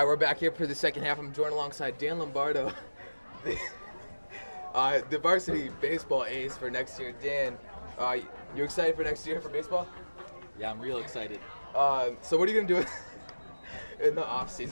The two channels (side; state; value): both; inverted; correlation -1.00